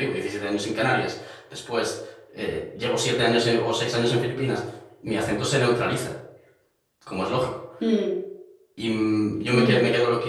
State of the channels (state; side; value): identical; both; correlation 1.00